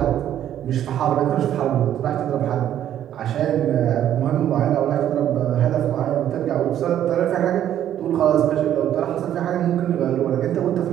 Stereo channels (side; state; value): left; quieter; 11.0 dB